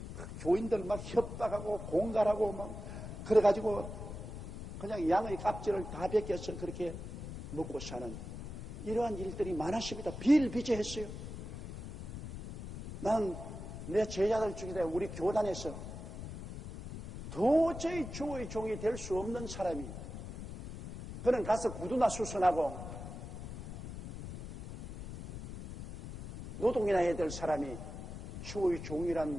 교인들 막 협박하고 공갈하고 막 그래가지고 그냥 양의 값질을 다 베껴서 그렇게 먹고 사는 이러한 일들이 많았습니다. 비일비재했어요. 난 내 제자들 중에 우리 교단에서 도저히 주의 종이 될 수 없는 사람이 그는 가서 구두나 수선하고 노동이나 해야 될 사람이 주의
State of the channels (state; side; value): noise; left; rumble, 9 dB below the sound